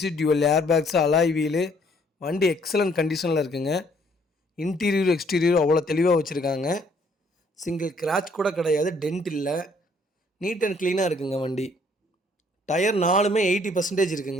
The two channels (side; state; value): both; normal; correlation 0.64